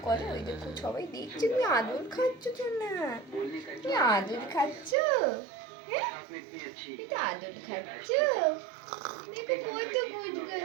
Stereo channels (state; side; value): drops out; left; at 5.0 s